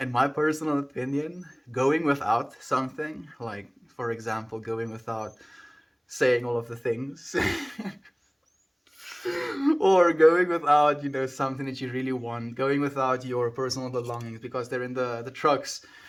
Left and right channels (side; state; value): both; identical; correlation 1.00